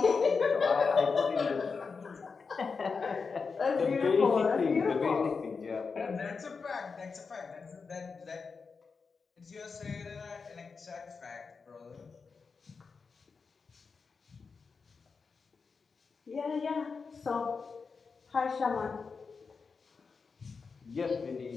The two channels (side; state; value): right; quieter; 5.0 dB